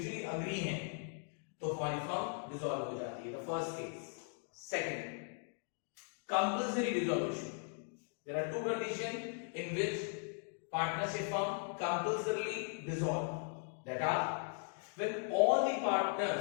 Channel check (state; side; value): silent; right; 52 dB below the other